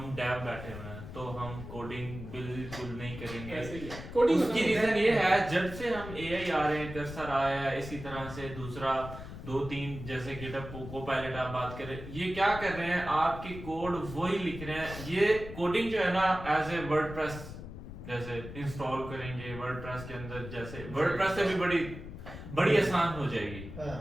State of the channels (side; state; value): left; noise; rumble, 11 dB below the sound